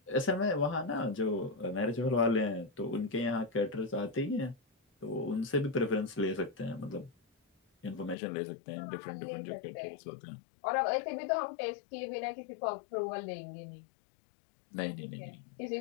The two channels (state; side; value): drops out; right; at 8.2 s